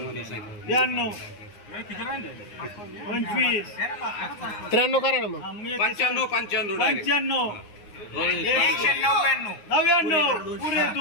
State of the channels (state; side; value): late; right; 9.6 ms